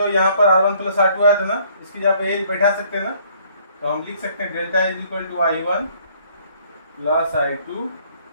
यहाँ पर R1 प्लस R2 आया था ना, इसकी जगह पे A बैठा सकते हैं ना, तो हम लिख सकते हैं delta is equal to I1 plus I2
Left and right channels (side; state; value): both; inverted; correlation -0.62